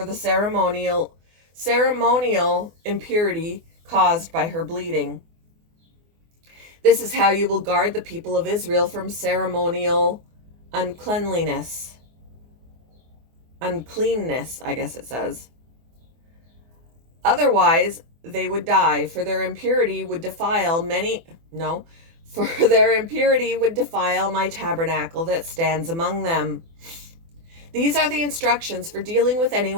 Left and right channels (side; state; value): left; late; 24 ms